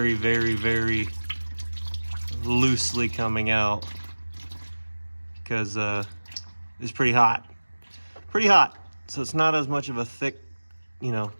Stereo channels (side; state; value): both; inverted; correlation -1.00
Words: very, very loosely coming out because it's pretty hot. Pretty hot. So it's not as much of a thick, you know,